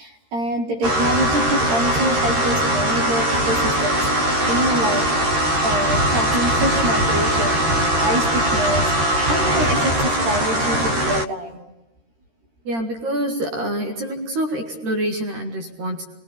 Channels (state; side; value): late; left; 13 ms